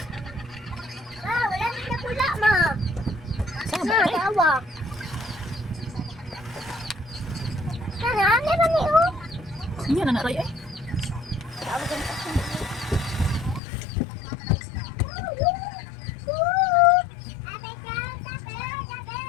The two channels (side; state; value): right; drops out; at 13.6 s